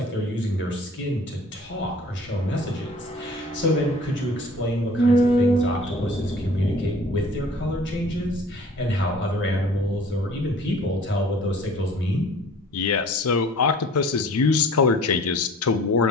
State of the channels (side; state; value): both; normal; correlation 0.48